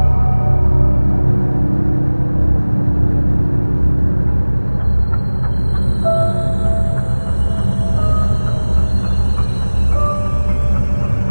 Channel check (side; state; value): both; inverted; correlation -1.00